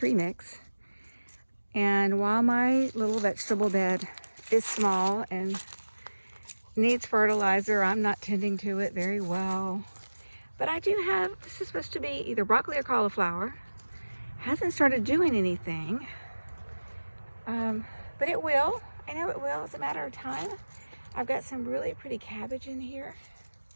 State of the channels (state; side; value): inverted; both; correlation -1.00